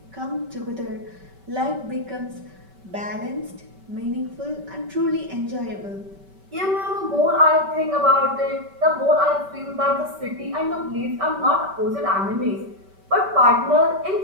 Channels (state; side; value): late; left; 5.2 ms